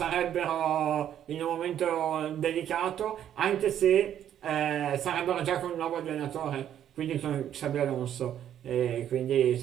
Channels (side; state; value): left; quieter; 10.4 dB